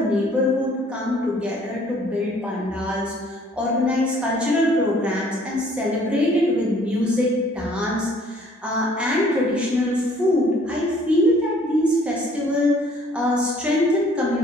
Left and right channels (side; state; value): both; normal; correlation 0.58